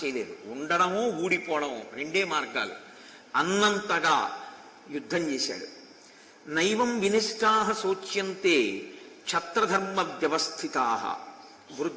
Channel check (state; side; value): identical; both; correlation 1.00